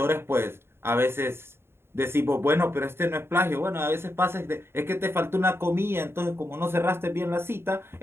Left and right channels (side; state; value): left; late; 0.12 ms